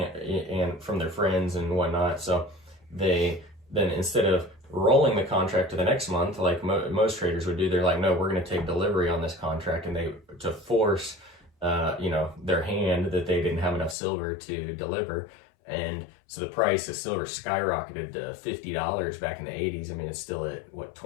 from their friends and whatnot. So they then, instead of rolling the contract to the next month like most traders would do, they're like, no, we're going to take delivery on this contract, and to force their hand that they didn't have enough silver to deliver. And so the price of silver skyrocketed to $50 back in the 80s. I mean, it's still at what,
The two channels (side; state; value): right; drops out; at 14.0 s